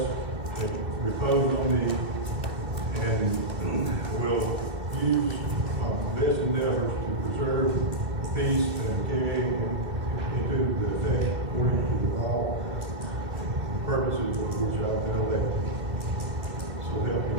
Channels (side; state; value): left; late; 2.2 ms